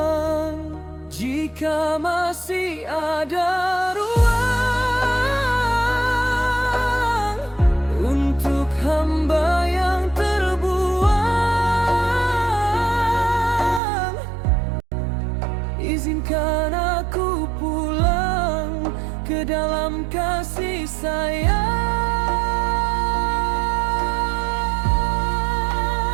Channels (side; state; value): left; drops out; at 13.8 s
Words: Jika masih ada ruang untuk hamba yang terbuang, izinkan aku pulang ke dalam kasih sayang.